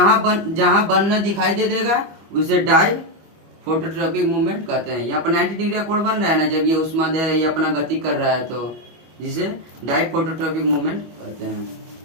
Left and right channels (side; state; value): left; late; 25 ms